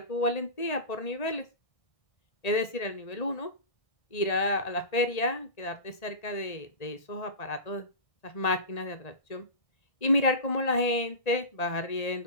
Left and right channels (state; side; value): late; right; 1.8 ms